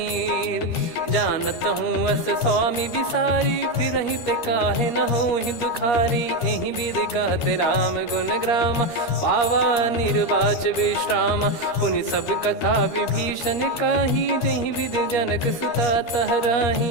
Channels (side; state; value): right; late; 13 ms